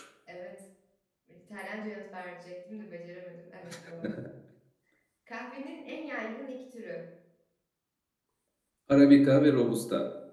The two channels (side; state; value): both; identical; correlation 1.00